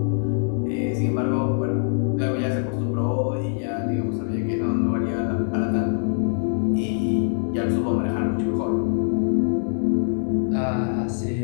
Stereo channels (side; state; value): right; silent; digital silence